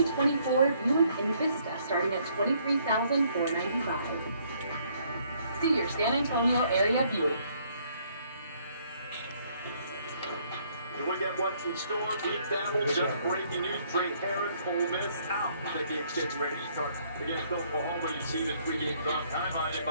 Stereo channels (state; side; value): inverted; both; correlation -0.66